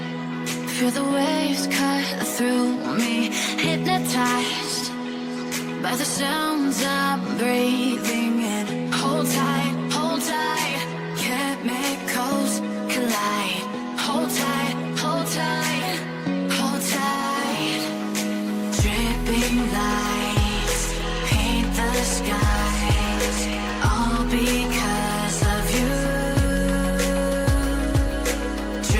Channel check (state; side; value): identical; both; correlation 1.00